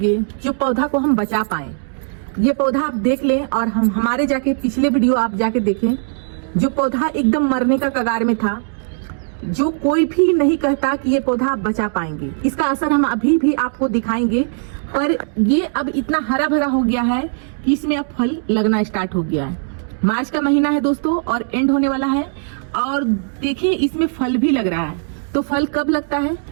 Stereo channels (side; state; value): left; silent; digital silence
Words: जो पौधा को हम बचा पाए। ये पौधा आप देख लें और हम हमारे जाके पिछले वीडियो आप जाके देखें। जो पौधा एकदम मरने का कगार में था, जो कोई भी नहीं कहता कि ये पौधा आप बचा पाएंगे। इसका असर हम अभी भी आपको दिखाएंगे, पर ये अब इतना हरा भरा हो गया है कि इसमें अब फल लगना स्टार्ट हो गया है। मार्च का महीना है दोस्तों और एंड होने वाला है, और देखिए इसमें फल भी लग रहा है। तो फल कब लगता है?